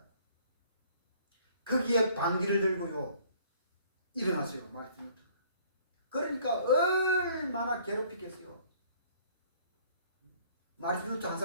거기에 방귀를 들고요. 일어났어요. 마르틴 루터. 그러니까 얼마나 괴롭히겠어요. 마르틴 루터 한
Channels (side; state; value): both; inverted; correlation -0.58